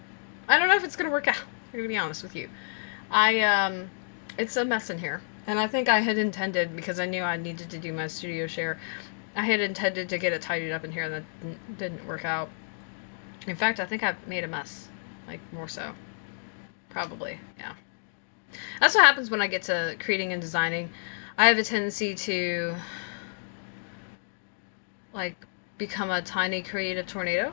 don't know if it's gonna work out. I'm gonna be honest with you. It's a mess in here. And I think I had intended, because I knew I needed to do my studio share, I had intended to get it tidied up in here, and that didn't work out. In fact, I think I've made a mess. Like, more so. Probably, yeah. That's what happens when I get to creating and designing. I have a tendency to, like, become a tiny creative tornado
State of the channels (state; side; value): silent; right; digital silence